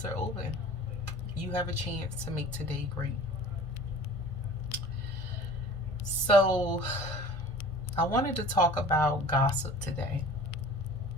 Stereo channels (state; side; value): late; right; 1.5 ms